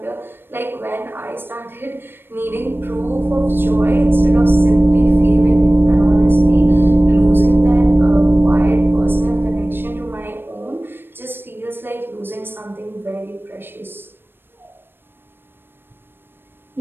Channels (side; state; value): left; late; 0.10 ms